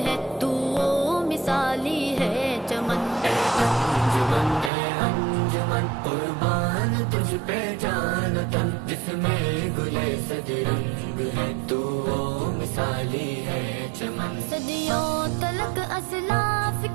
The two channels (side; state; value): left; drops out; at 4.7 s